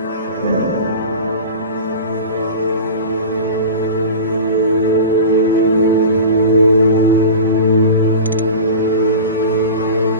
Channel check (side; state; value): both; inverted; correlation -0.32